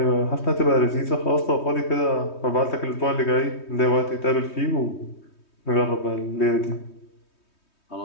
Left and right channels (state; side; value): late; right; 3.2 ms